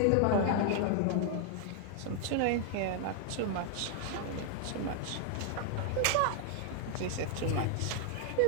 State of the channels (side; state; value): both; different; correlation 0.00